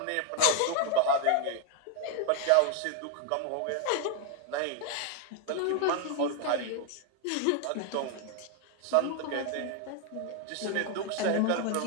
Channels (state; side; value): different; both; correlation 0.00